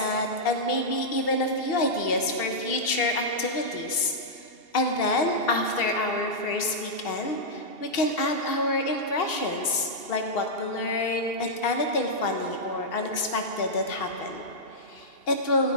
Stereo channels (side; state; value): right; late; 2.7 ms